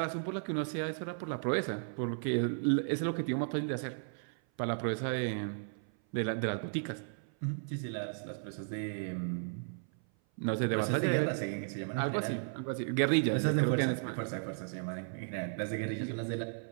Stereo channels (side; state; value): left; silent; 55 dB below the other